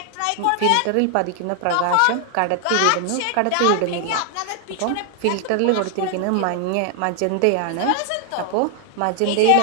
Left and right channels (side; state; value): both; different; correlation 0.00